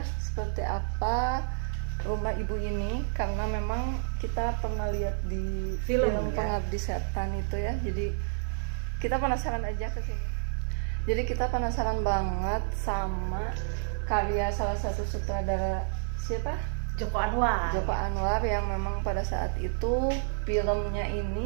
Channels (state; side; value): silent; left; digital silence